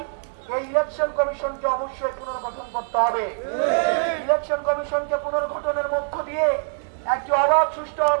এই ইলেকশন কমিশনকে অবশ্যই পুনর্গঠন করতে হবে। ইলেকশন কমিশনকে পুনর্গঠনের মধ্য দিয়ে একটি অবাধ, সুষ্ঠু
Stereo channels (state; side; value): silent; left; digital silence